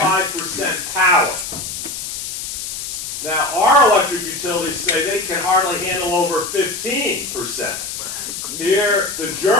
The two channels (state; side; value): noise; left; hiss, 6 dB below the sound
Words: power. Now, our electric utilities say they can hardly handle over 15%. Here, the